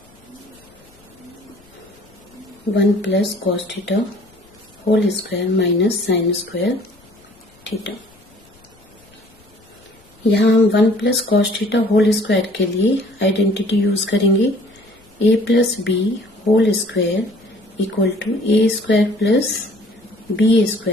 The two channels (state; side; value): noise; left; rumble, 29 dB below the sound